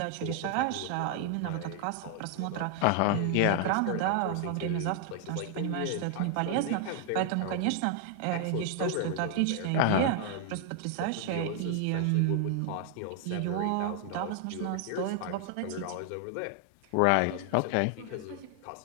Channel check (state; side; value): different; both; correlation 0.00